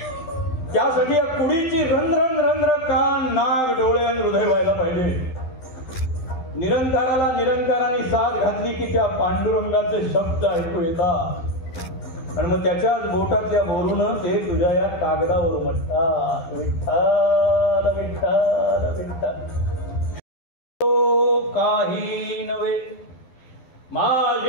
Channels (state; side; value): late; right; 12 ms